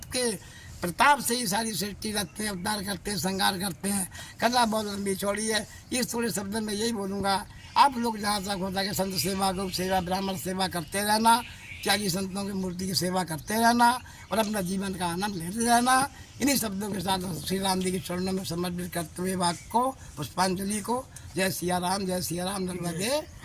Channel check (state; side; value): identical; both; correlation 1.00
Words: के प्रताप से ही सारी सृष्टि रखते हैं, उद्धार करते हैं, श्रृंगार करते हैं। कथा बहुत लंबी चौड़ी है, इस थोड़े शब्द में यही बोलूँगा। आप लोग जहाँ तक होता है संत सेवा, गौ सेवा, ब्राह्मण सेवा करते रहना, त्यागी संतों की मूर्ति की सेवा करते रहना और अपना जीवन का आनंद लेते रहना। इन्हीं शब्दों के साथ श्री राम जी के चरणों में समर्पित करते हुए वाक्य को, पुष्पांजलि को, जय सिया राम, जय सिया राम, नर्मदे